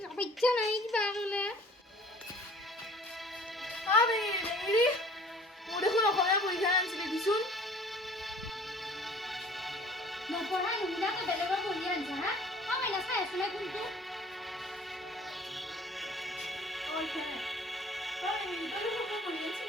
ইচ্ছা নাই কিবা গলে আরে বেঙিৰি মোৰ দেখোন অসমীয়া পৰীক্ষা আনিছিলে দিচোন নপঢ়া মহিলা তো বেলেগৰ পঢ়ি আনছা হা মই না চাই আছো না কোনটো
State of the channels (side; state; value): both; normal; correlation 0.50